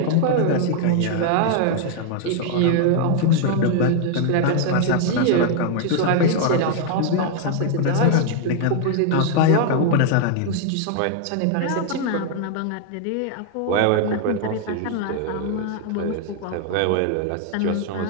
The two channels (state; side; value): different; both; correlation 0.00